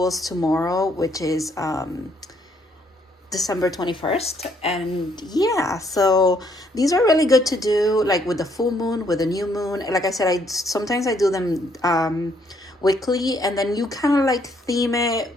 tomorrow, which is December 21st. And yeah, so these are really good to do like with the full moon, with the new moon. Like I said, I sometimes do them weekly, and then you kind of like theme it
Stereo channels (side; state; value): both; normal; correlation 0.69